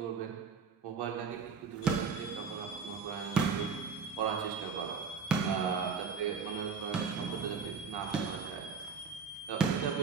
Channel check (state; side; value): quieter; left; 5.6 dB